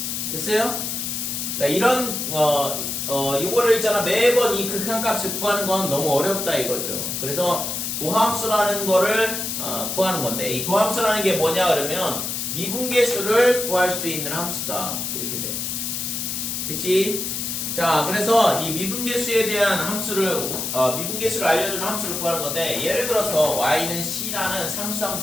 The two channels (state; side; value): noise; left; hiss, 3 dB below the sound